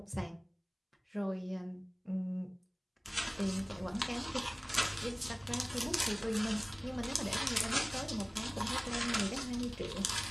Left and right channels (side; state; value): both; identical; correlation 1.00